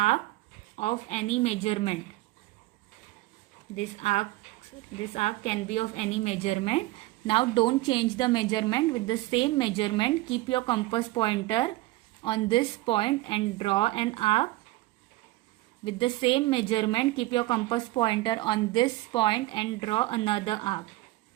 of any measurement. This arc can be of any measurement. Now don't change the measurement. With the same measurement, keep your compass pointer on this point and draw an arc. With the same measurement, keep your compass pointer on this point and draw another arc.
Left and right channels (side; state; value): left; quieter; 18.8 dB